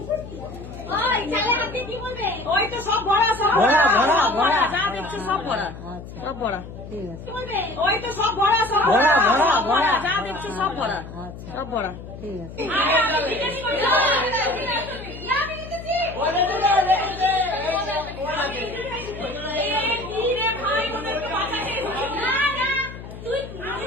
ওই তো সব ভরা সব ভরা, ভরা, ভরা। যা দেখছো সব ভরা আচ্ছা সব ভরা ঠিক আছে। ওই তো সব ভরা সব ভরা, ভরা, ভরা। যা দেখছো সব ভরা আচ্ছা সব ভরা ঠিক আছে।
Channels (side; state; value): left; noise; hum, 13 dB below the sound